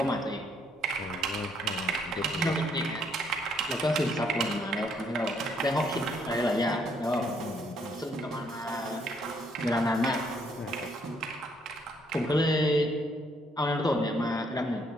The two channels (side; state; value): both; normal; correlation 0.69